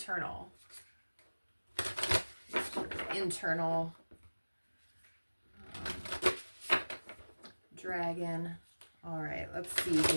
Dragon. All right, let's see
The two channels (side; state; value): both; inverted; correlation -1.00